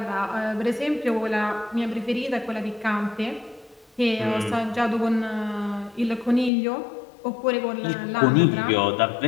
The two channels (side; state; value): right; drops out; at 6.5 s